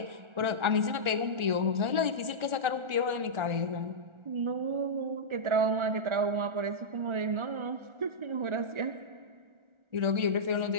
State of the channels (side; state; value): left; late; 1.4 ms